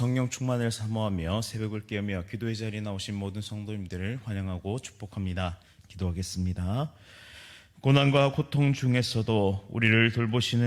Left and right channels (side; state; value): both; identical; correlation 1.00